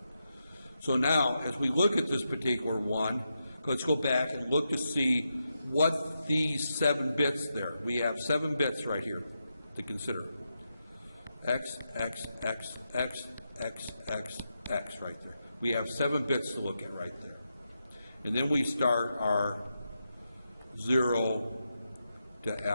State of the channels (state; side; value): inverted; both; correlation -0.86